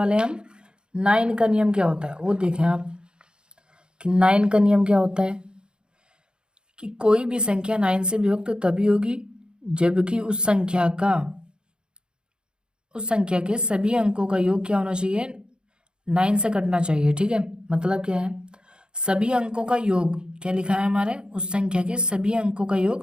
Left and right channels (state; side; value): late; left; 0.049 ms